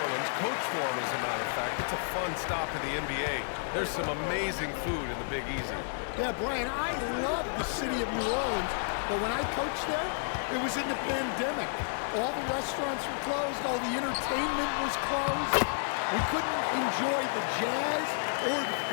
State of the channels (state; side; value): silent; right; 57 dB below the other